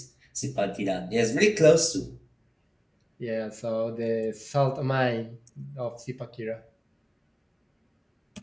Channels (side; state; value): both; identical; correlation 1.00